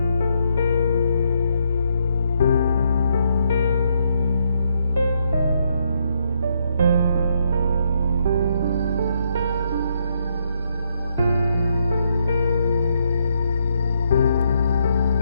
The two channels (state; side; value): inverted; both; correlation -0.76